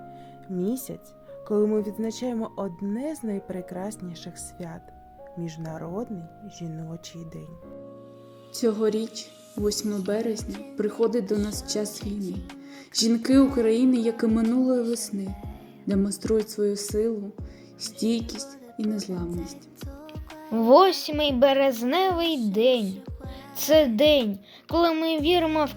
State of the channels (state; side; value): identical; both; correlation 1.00